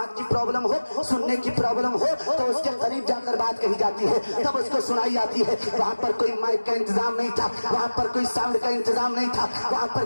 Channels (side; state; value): both; inverted; correlation -1.00